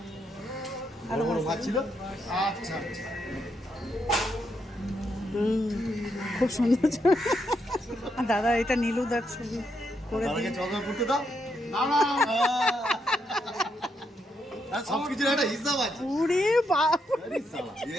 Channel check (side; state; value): both; normal; correlation 0.79